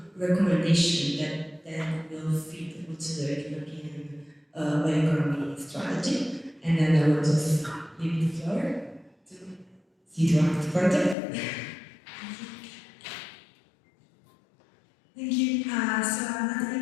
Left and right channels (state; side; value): drops out; right; at 11.2 s